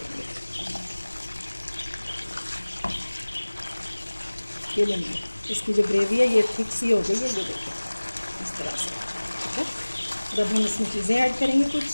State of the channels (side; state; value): both; inverted; correlation -1.00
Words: ये लेंगे, इसकी जो ग्रेवी है ये थिक सी हो गई है, ये देखिए इस तरह से। ठीक है, जब हम इसमें चीज़ें ऐड करेंगे कुछ,